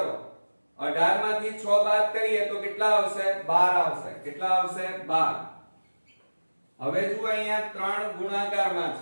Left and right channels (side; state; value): both; inverted; correlation -1.00